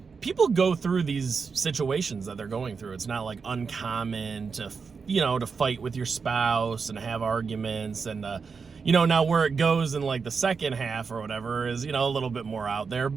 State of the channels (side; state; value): left; quieter; 5.3 dB